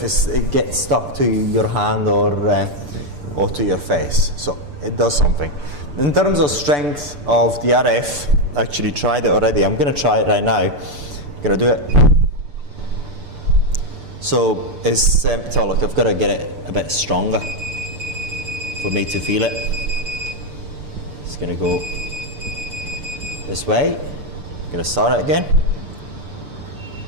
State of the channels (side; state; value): left; late; 6.9 ms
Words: it gets stuck to your hand or to your face. So it does something. In terms of strength of the RF, I actually tried it already. I'm going to try it right now. I'm going to do it. So it's so look, I've got to get it a bit stronger for me to feel it. It's going to go this way. I'm going to start it again.